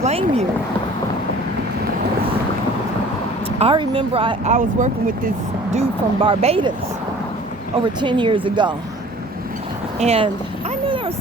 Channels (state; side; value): normal; both; correlation 0.48